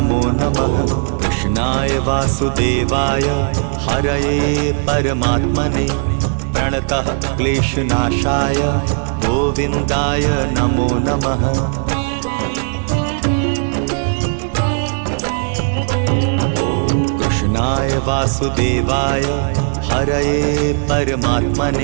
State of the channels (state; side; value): silent; left; 64 dB below the other